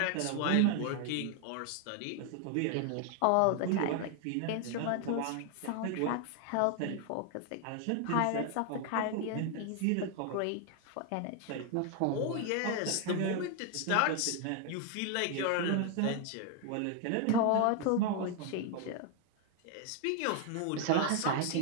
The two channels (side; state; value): both; different; correlation 0.01